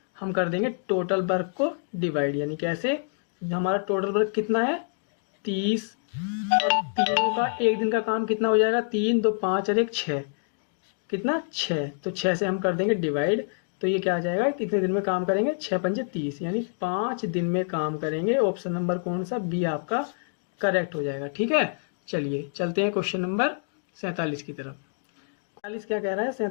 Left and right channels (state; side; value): silent; right; digital silence